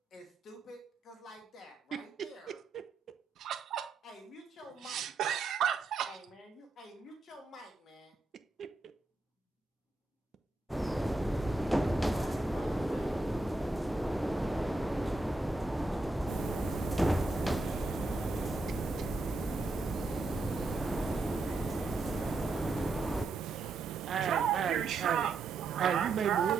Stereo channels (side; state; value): left; quieter; 3.3 dB